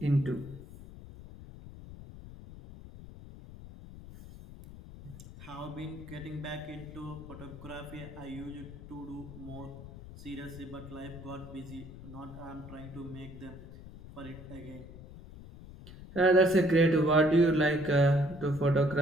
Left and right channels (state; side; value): noise; left; rumble, 15 dB below the sound